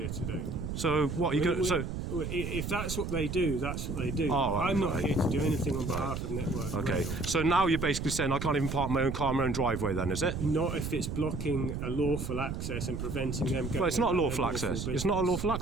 to do. So what are you going? So. If that's what they do, that's what they do. Oh, I'm not here to do anything on behalf of Network Okay, Rail. so now you're basically saying I can't even park my own car in my own driveway then, is it? Not if it's blocking a lawful access and preventing them going. Well, it's not a about lawful their access. business. It's not a lawful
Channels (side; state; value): right; noise; rumble, 4 dB below the sound